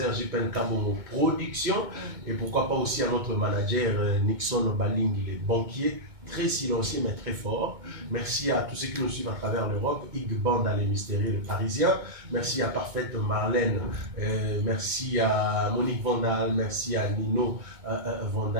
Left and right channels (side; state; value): left; late; 2.2 ms